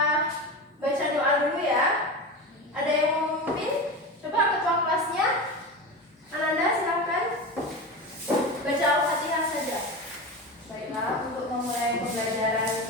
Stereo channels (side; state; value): both; normal; correlation 0.25